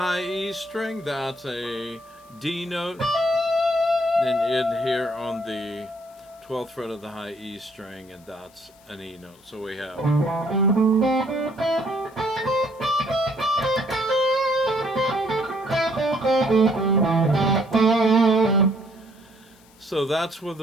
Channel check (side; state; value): left; noise; hiss, 29 dB below the sound